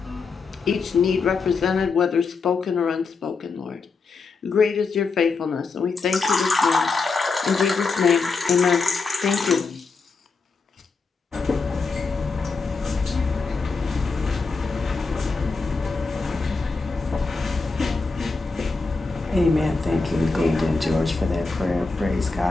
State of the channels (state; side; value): quieter; right; 4.3 dB